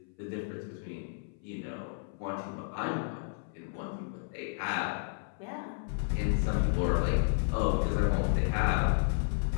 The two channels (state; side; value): silent; right; 56 dB below the other